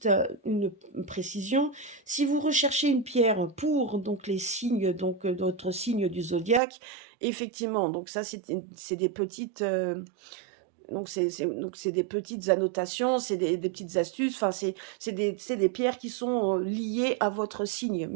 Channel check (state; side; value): drops out; left; at 6.6 s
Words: à une précision, si vous recherchez une pierre pour les signes, d'autres signes du zodiaque, effectivement, donc ça c'est des petites c'est des petites annotations, c'est des petites astuces, enfin c'est des pierres qui sont liées à votre signe.